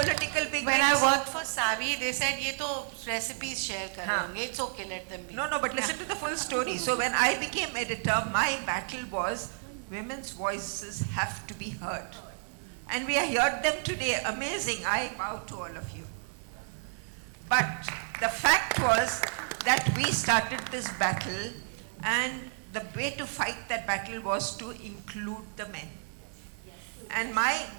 big When I wigs. worked for Savvy, they said, ये तो recipes share कर रहे होंगे. It's okay, let them be. No, but listen to the full story. So when I became editor, my battle was women's voices have to be heard. And we heard them today. Amazing. I bow to all of you. But the fact was that we started this battle, and the way to fight that battle was to include the men. And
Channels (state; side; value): silent; left; 57 dB below the other